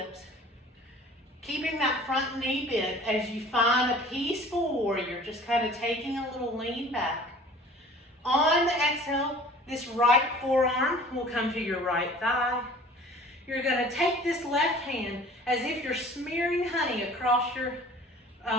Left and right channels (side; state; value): both; normal; correlation 0.47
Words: keeping that front knee bent as you find a peaceful warrior, just kind of taking a little lean back. On the exhale, this right forearm will come to your right thigh. You're going to take this left hand as if you're smearing honey across your